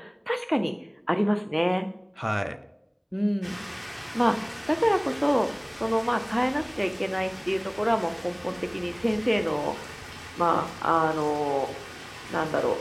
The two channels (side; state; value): both; identical; correlation 1.00